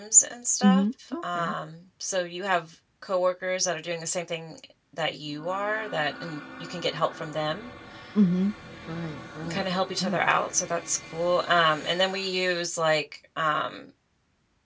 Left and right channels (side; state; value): both; identical; correlation 1.00